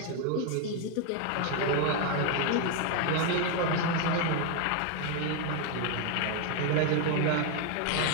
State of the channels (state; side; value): different; both; correlation 0.01